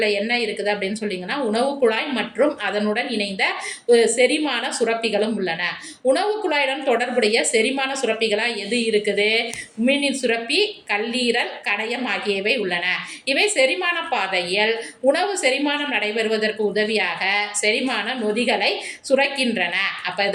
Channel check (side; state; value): both; identical; correlation 1.00